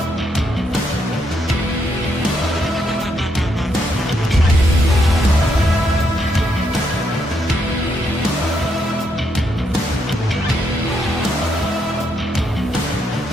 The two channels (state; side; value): normal; both; correlation 0.77